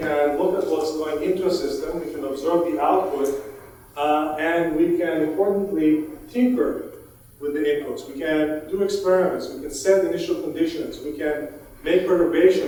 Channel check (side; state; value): both; identical; correlation 1.00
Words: look at what's going into a system, we can observe the output, and we can importantly tinker with the inputs. We can do experiments, we can set initial conditions, we can make